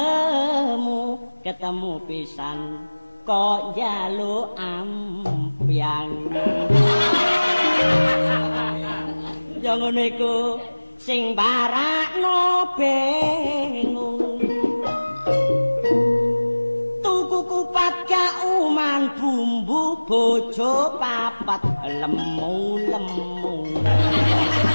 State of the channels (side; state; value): both; inverted; correlation -1.00